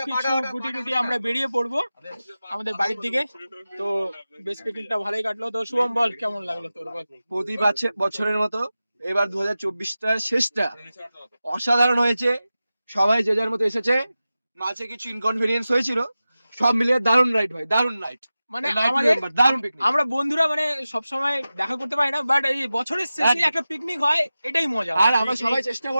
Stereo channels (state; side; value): inverted; both; correlation -0.95